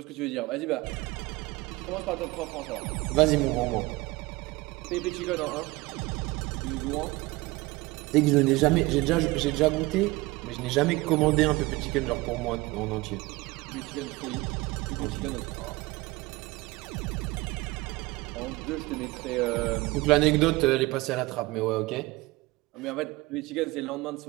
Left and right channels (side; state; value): left; quieter; 21.6 dB